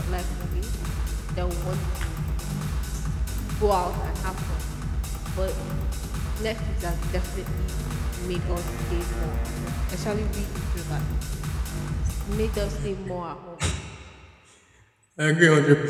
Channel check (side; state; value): both; identical; correlation 1.00